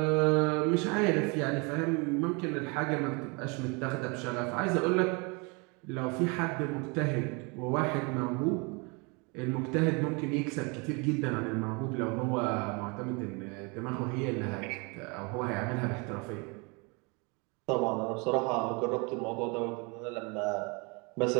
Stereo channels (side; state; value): left; quieter; 30.4 dB